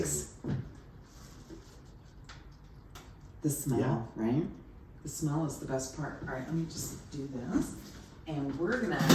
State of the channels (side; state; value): both; identical; correlation 1.00